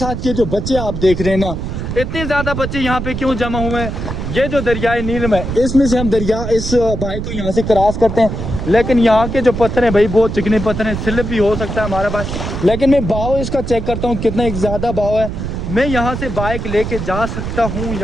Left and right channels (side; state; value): right; noise; rumble, 5 dB below the sound